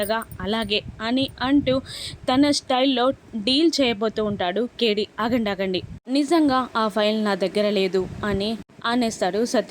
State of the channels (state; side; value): identical; both; correlation 1.00